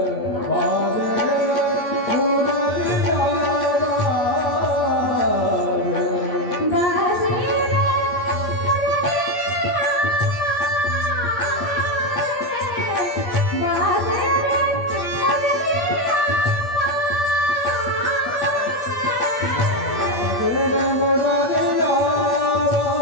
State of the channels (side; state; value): right; late; 8.5 ms